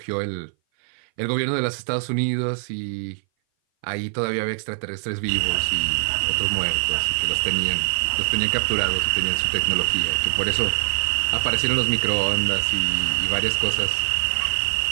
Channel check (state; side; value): silent; left; 58 dB below the other